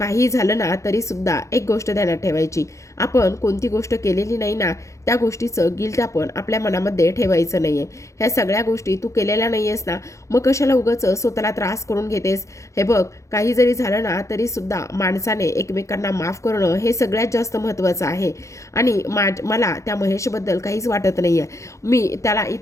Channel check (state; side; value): late; right; 0.15 ms